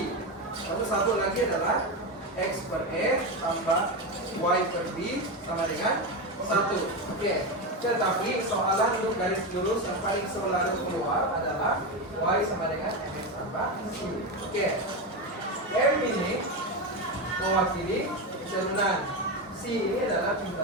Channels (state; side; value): normal; both; correlation 0.14